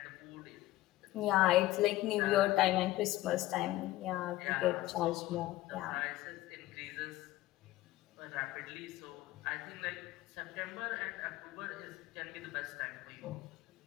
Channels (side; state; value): right; quieter; 16.5 dB